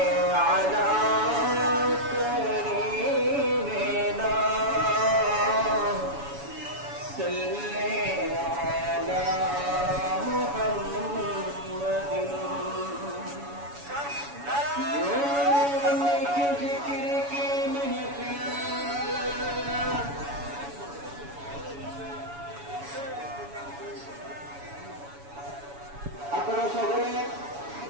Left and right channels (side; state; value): left; late; 7.1 ms